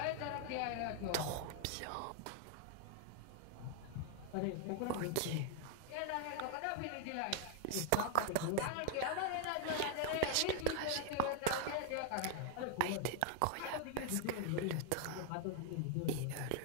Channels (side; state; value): both; different; correlation 0.00